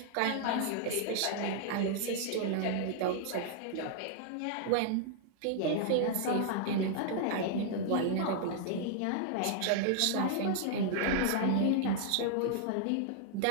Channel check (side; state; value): both; different; correlation -0.01